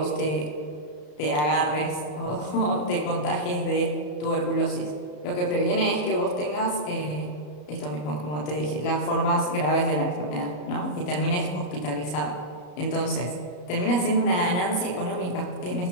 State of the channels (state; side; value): late; right; 33 ms